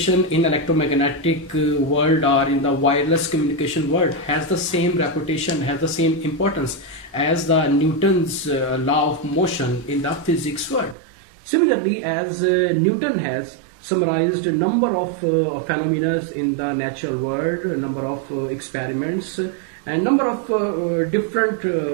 in electromagnetic world or in the wireless communication world has the same reputation, has the same importance as the Newton's law of motion in the physics world. Similarly, as Newton has summarized a number of phenomena in the natural world, a number of experiments, and number of different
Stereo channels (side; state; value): left; drops out; at 11.0 s